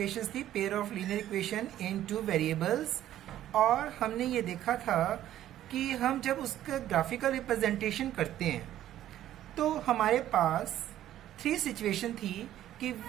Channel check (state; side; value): quieter; left; 12.5 dB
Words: थी, pair of linear equation in two variables, और हमने ये देखा था कि हम जब उसका ग्राफिकल रिप्रेजेंटेशन करते हैं तो हमारे पास थ्री सिचुएशन थी कि